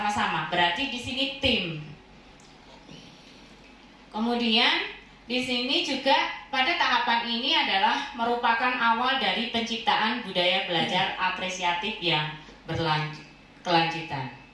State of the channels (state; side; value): identical; both; correlation 1.00